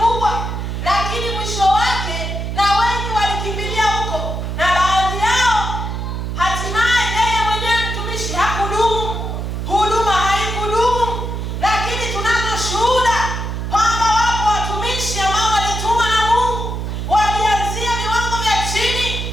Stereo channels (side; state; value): right; noise; hum, 4 dB below the sound